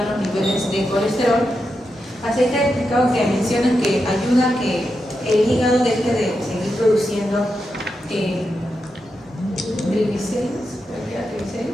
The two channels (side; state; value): both; normal; correlation 0.87